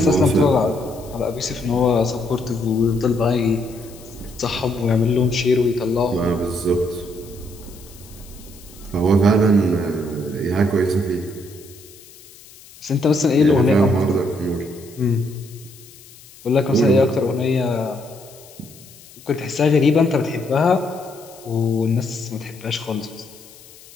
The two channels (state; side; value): noise; left; hiss, 22 dB below the sound